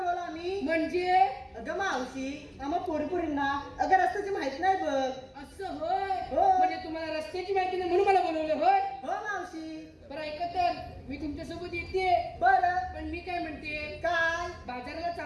आम्ही म्हणजे अगं मावशी आम्हा पोरपुरींना अगं रस्त्याची माहित नाही बघ असं होय हो. म्हणजे तुम्हाला रस्त्याची माहिती नाही म्हणून मला बोलवलं होय हो मावशी बरं ऐका तर मी तुमच्यासोबत येते बरं पण मी काय म्हणते काय बाजाराला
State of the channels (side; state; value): both; identical; correlation 1.00